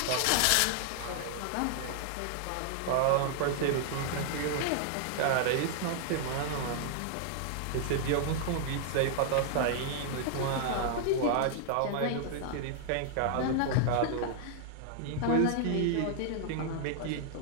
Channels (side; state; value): both; different; correlation -0.01